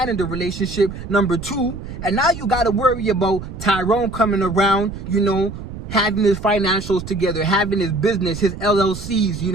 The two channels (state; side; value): noise; right; rumble, 10 dB below the sound